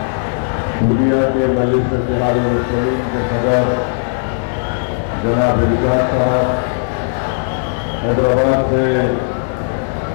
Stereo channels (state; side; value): silent; right; digital silence